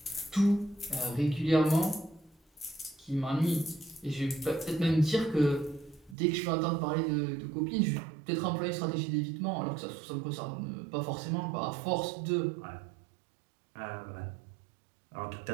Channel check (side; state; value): left; drops out; at 6.2 s